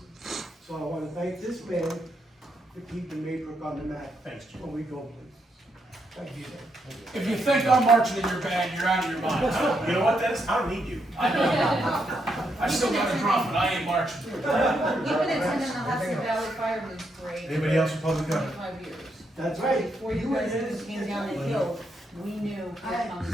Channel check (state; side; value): normal; both; correlation 0.79